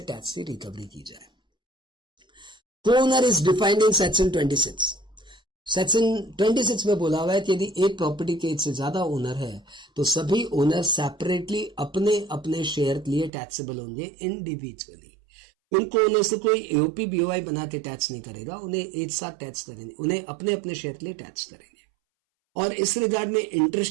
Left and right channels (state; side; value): drops out; left; at 13.3 s